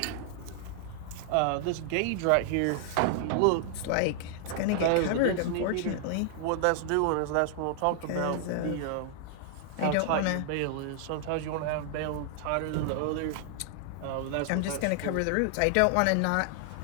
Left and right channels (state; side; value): different; both; correlation 0.00